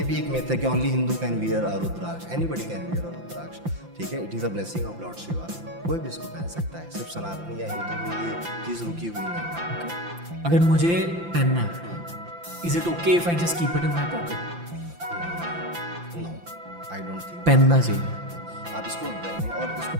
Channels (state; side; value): late; left; 5.8 ms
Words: भी एक मिथ है कि only Hindu can wear a rudraksha, anybody can wear a rudraksha, ठीक है। It is a blessing of lord Shiva, कोई भी इसको पहन सकता है, सिर्फ सनातनी या हिंदू में ये चीज़ रुकी हुई नहीं। अगर मुझे पहनना है, is it okay if I just keep it in my pocket? No, I don't think. पहनना चाहिए। आप इसको पहने और इसको